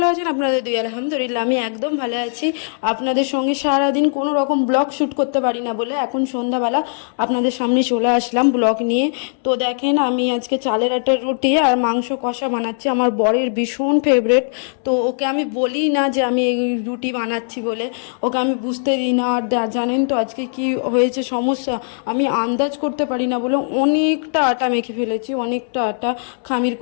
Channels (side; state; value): right; silent; digital silence